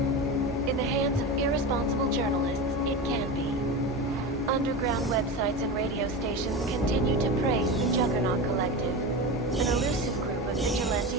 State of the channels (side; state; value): both; normal; correlation 0.24